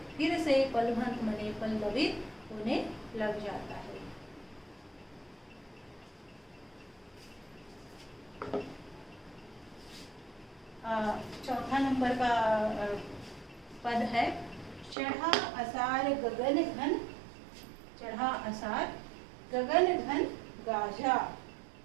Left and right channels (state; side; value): drops out; left; at 15.0 s